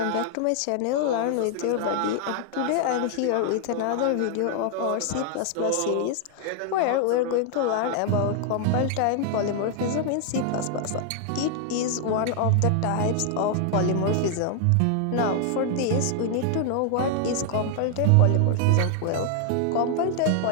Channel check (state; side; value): different; both; correlation 0.00